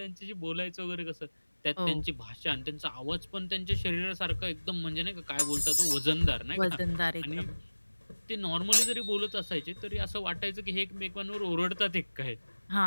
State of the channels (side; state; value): both; inverted; correlation -1.00